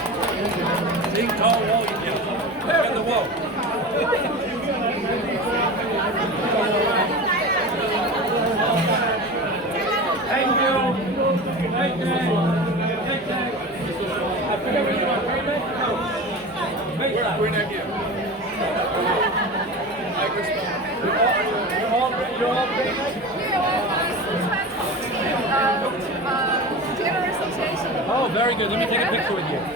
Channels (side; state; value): both; normal; correlation 0.30